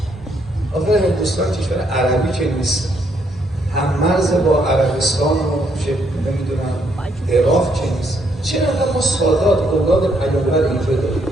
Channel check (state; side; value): normal; both; correlation 0.72